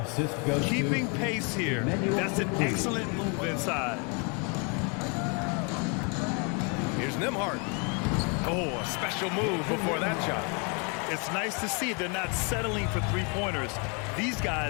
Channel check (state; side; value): quieter; right; 34.6 dB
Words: Keeping pace here. That's an excellent move inside. Here's Nembhard. Oh, a special move before that shot. It's nice to see they're not settling for three-pointers. These